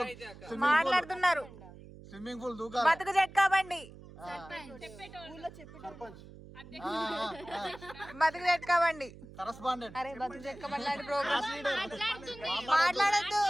మాట్లాడుతున్నారు. స్విమ్మింగ్ పూల్ దూకాలి. బతుకు జట్కా బండి. ఊళ్ళో చెప్పి సర్పంచ్. బతుకు జట్కా బండి. కరస్పాండెంట్. అరే బతుకు జట్కా బండి లాంటి ప్రోగ్రామ్ మాట్లాడద్దు.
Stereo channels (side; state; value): right; noise; hum, 18 dB below the sound